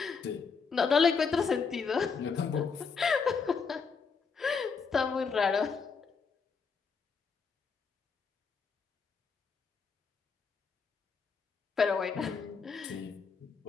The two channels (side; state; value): right; quieter; 5.4 dB